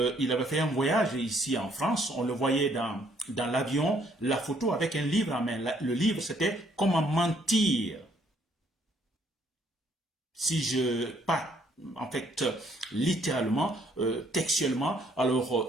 avait fait un voyage ici en France, on le voyait dans l'avion, la photo avec un livre en main. Le livre, c'était « Comment mentir ». Si je pas en fait, littéralement, textuellement, alors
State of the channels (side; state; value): both; normal; correlation 0.66